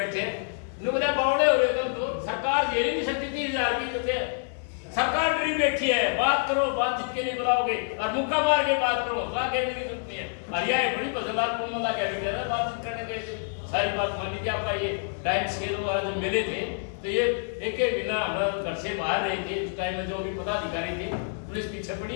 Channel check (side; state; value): right; silent; 60 dB below the other